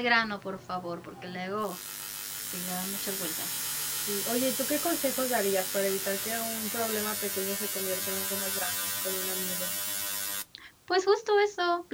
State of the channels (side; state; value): both; identical; correlation 1.00